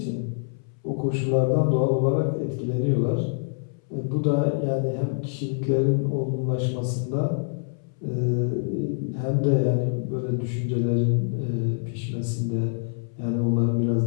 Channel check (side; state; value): right; silent; 61 dB below the other